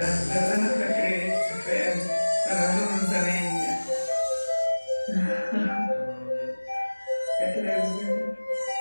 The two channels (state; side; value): inverted; both; correlation -1.00